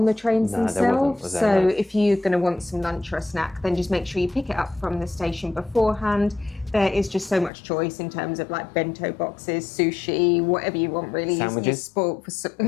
the trains themselves. So if you're going to want some lunch or a snack, then just make sure you pick it up from the station beforehand. There is just so much choice in terms of like bento boxes, sushi, whatever you want really. Sandwiches.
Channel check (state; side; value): drops out; right; at 7.5 s